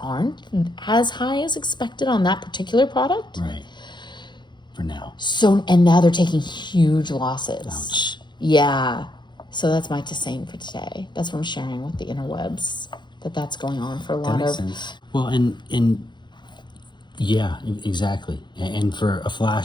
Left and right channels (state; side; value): late; right; 0.22 ms